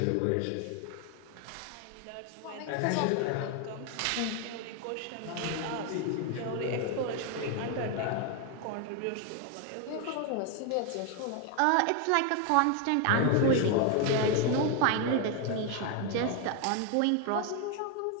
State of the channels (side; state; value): both; different; correlation 0.01